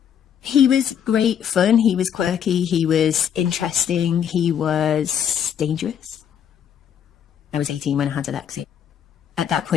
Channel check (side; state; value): right; quieter; 8.8 dB